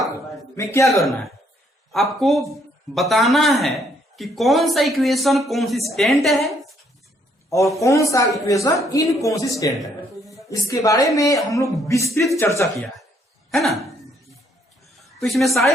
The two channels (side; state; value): both; normal; correlation 0.68